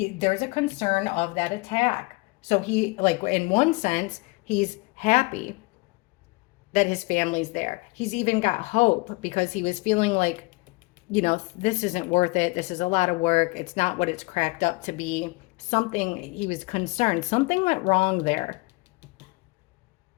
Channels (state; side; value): quieter; right; 25.4 dB